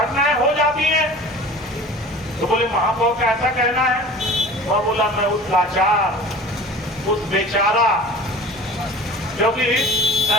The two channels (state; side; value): normal; both; correlation 0.41